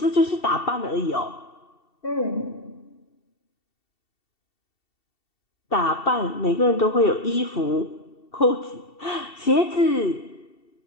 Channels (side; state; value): right; late; 2.7 ms